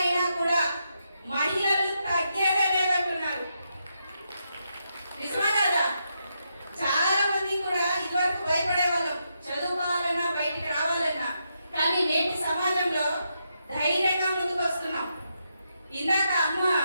అయినా కూడా మహిళలు తగ్గేదే లేదంటున్నారు. నిజమా కదా? చాలా మంది కూడా ఇదివరకు భయపడే వాళ్ళం చదువుకోవాలన్నా, బయటికి రావాలన్నా. కానీ నేటి సమాజంలో ధైర్యంగా ముందుకు వస్తున్నాం. ఇందాక అమ్మ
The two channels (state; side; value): inverted; both; correlation -0.82